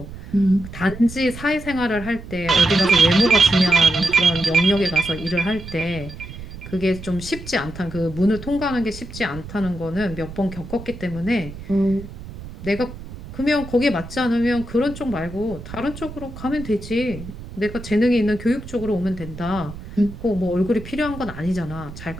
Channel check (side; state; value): right; noise; rumble, 13 dB below the sound